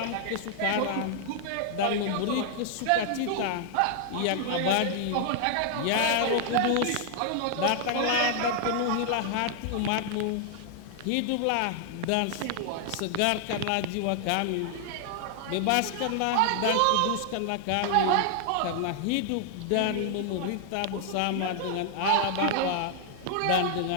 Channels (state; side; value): different; both; correlation 0.00